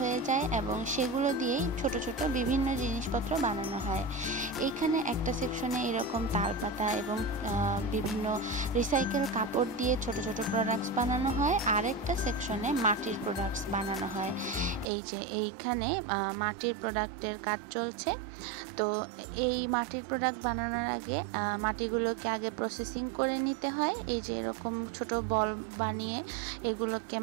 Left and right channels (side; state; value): left; drops out; at 14.9 s